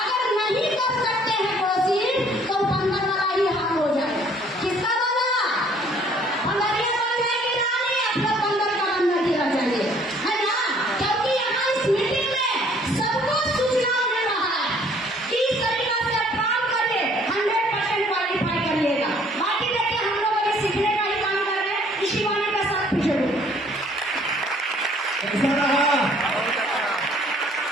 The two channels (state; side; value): normal; both; correlation 0.59